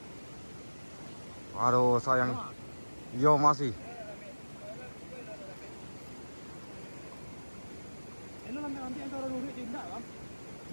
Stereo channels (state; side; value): inverted; both; correlation -1.00